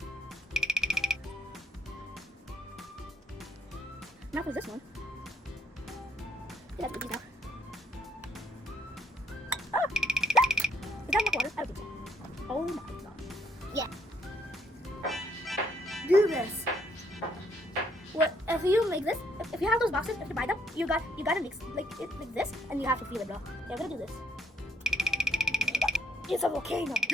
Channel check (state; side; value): normal; both; correlation 0.70